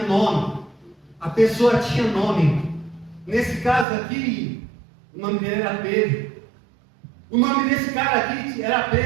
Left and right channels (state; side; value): drops out; left; at 3.9 s